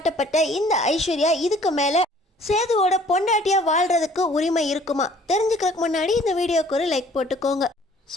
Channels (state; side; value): normal; both; correlation 0.55